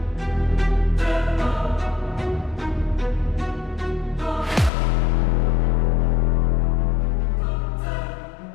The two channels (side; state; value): right; drops out; at 4.7 s